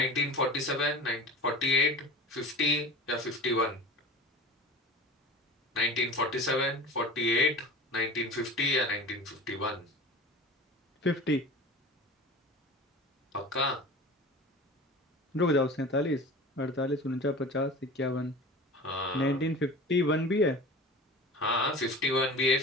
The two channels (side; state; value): both; normal; correlation 0.36